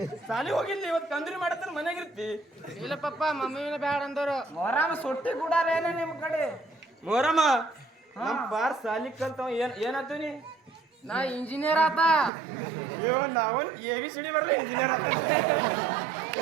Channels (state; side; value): drops out; left; at 12.3 s